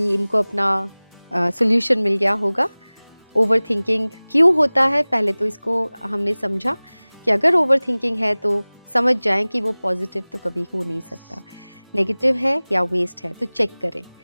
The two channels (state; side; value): inverted; both; correlation -1.00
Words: इनको अपना सॉल्यूशन मिल गया होगा। ओवरथिंकिंग क्यों होता है, पहले तो इसको हमने समझा कि अगर ओवरथिंकिंग है तो समझ जाएं कि वो पॉजिटिव तो कभी हो नहीं सकता, नेगेटिव है या वेस्ट है, तो चेक करें।